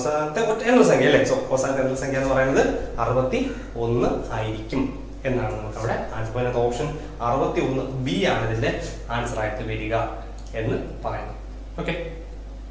ഒറ്റ എണ്ണൽ സംഖ്യ അല്ലേ. സോ അവസാനത്തെ എണ്ണൽ സംഖ്യ എന്ന് പറയുന്നത് 61 ആയിരിക്കും എന്നാണ് നമുക്ക് അവിടെ ആൻസർ. അതിനകത്ത് ഓപ്ഷൻ 61 ബി ആണ് ഇതിന്റെ ആൻസർ ആയിട്ട് വരിക എന്ന് പറയുന്നത്. ഓക്കെ.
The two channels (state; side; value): identical; both; correlation 1.00